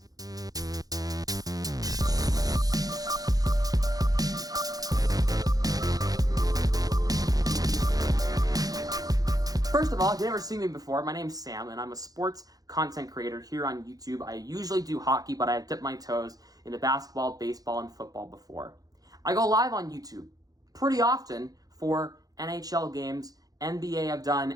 First of all, if you've never seen me before, my name's Sam, and I'm a sports content creator here on YouTube. I usually do hockey, but I've dipped my toes into basketball, baseball, and football before. I go live on YouTube pretty often for NHL games, NBA I've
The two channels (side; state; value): left; late; 0.18 ms